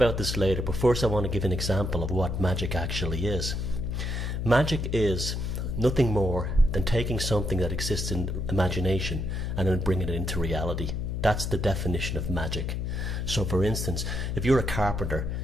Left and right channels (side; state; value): left; noise; hum, 2 dB below the sound